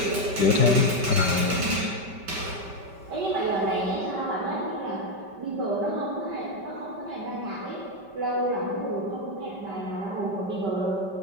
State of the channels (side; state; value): left; late; 5.1 ms